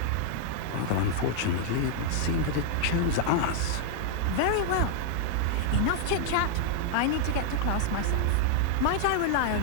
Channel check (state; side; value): different; both; correlation 0.00